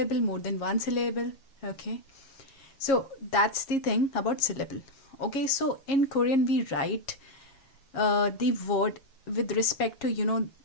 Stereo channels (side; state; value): right; late; 7.3 ms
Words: more than 1 syllable. Okay, so that's the thing about syllable. Okay, so in Korean we write the word with respect to